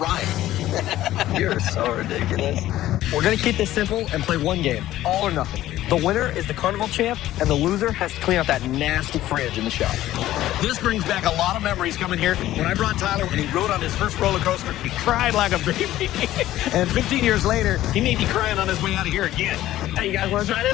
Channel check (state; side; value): quieter; right; 14.3 dB